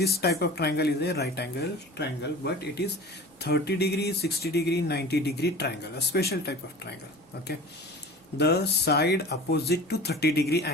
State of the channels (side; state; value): both; normal; correlation 0.39